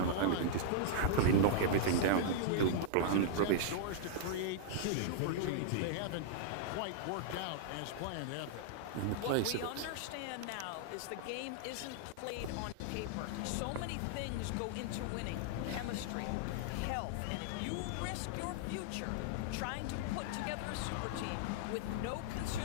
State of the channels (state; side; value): different; both; correlation -0.01